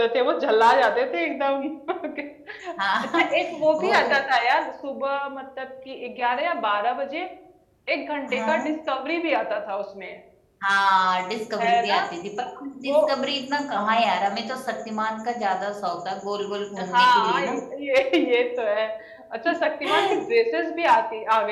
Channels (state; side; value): identical; both; correlation 1.00